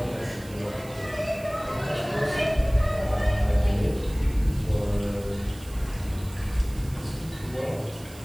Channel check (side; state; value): right; noise; hiss, 20 dB below the sound